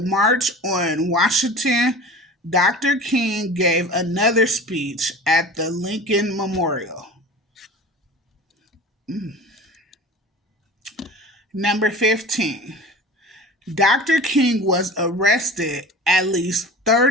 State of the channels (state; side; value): normal; both; correlation 0.36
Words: on Washington, Dr. King gave another speech at the Lincoln Memorial. Number 15. Dr. King was arrested at least